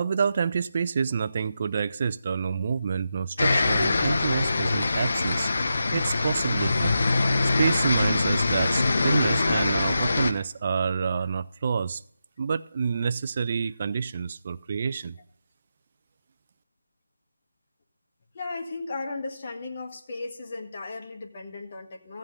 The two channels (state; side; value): inverted; both; correlation -0.87